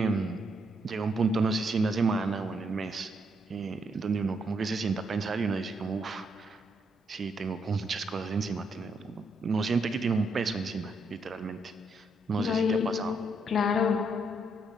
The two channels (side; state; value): both; normal; correlation 0.76